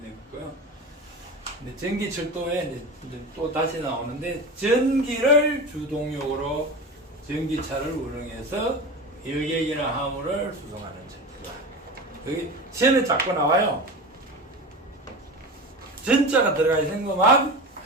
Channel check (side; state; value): both; normal; correlation 0.27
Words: 되겠고요. 근데 전기철도에 이제 또 다시 나오는데 전기를 주동력으로 전기차를 운행해서 여객이나 화물을 수송하는 철도다. 여기 시험에 자꾸 나와요. 전자가 들어가 있는 것만